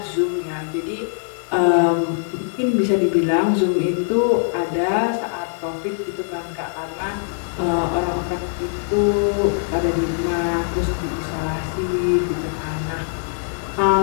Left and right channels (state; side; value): silent; right; digital silence